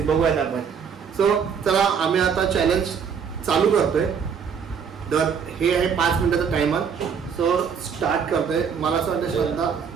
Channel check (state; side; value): quieter; left; 6.8 dB